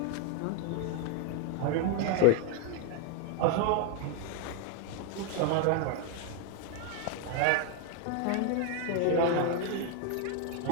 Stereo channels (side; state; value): both; different; correlation 0.00